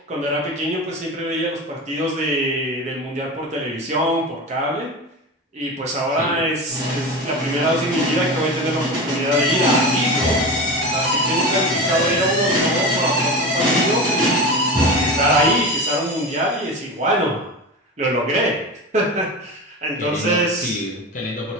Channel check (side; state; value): both; normal; correlation 0.26